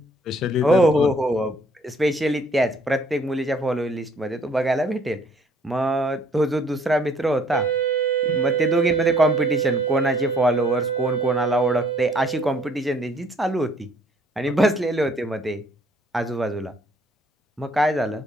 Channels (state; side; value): normal; both; correlation 0.61